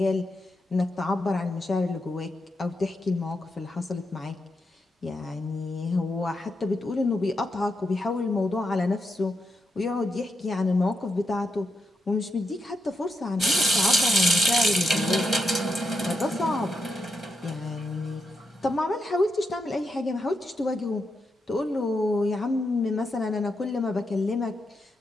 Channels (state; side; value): normal; both; correlation 0.84